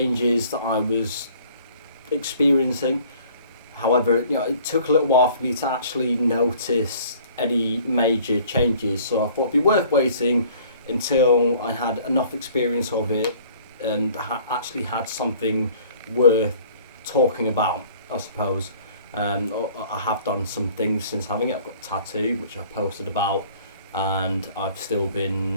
that I was experiencing. However, it took a little while for me to actually notice any major changes, so I thought it'd be worth waiting until I had enough experience of it and actually had something worth talking about, I suppose. I have done some things since having it. I've got a tattoo, which I posted about, and I've still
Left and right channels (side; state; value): both; inverted; correlation -0.53